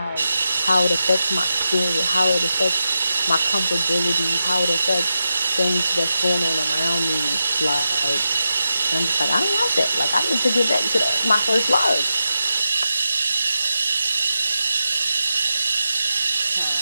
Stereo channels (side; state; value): both; inverted; correlation -0.90